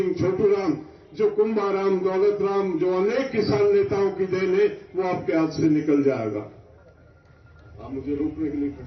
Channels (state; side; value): identical; both; correlation 1.00